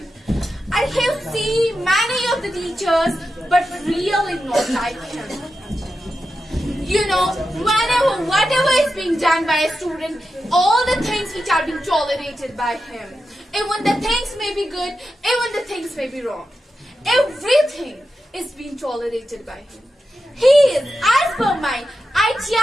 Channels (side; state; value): both; normal; correlation 0.90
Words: I have seen many of the teachers, but really not like him. You know, whatever is being done by a student, all the things which are being tolerated by him, even the things may be good, even the things may be wrong, everything is being tolerated by him. He is, as per my